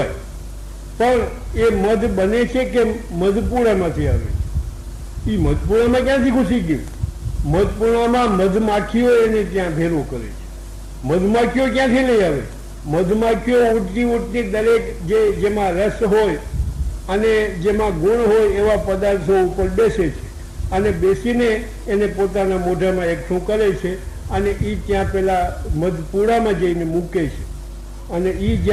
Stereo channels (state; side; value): identical; both; correlation 1.00